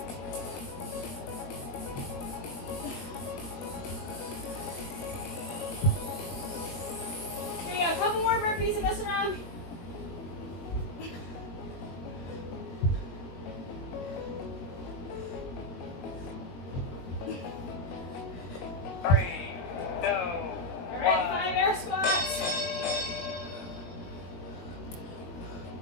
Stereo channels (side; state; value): right; late; 21 ms